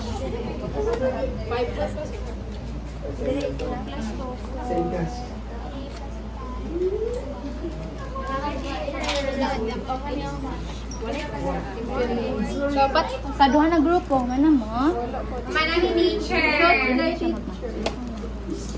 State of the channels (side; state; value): both; identical; correlation 1.00